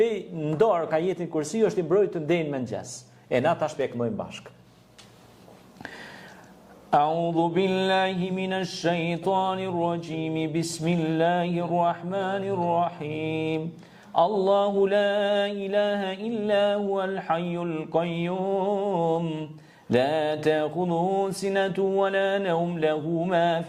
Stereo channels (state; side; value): identical; both; correlation 1.00